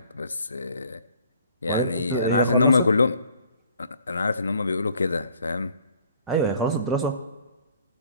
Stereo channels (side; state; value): both; inverted; correlation -0.58